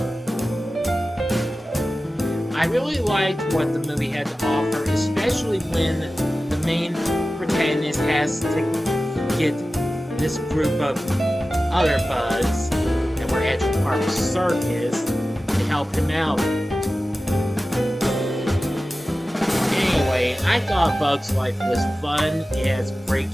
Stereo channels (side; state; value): both; normal; correlation 0.95